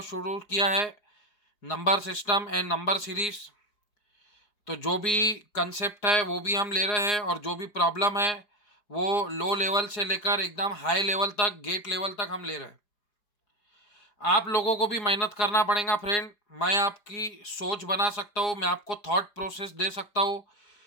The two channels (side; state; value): right; late; 4.9 ms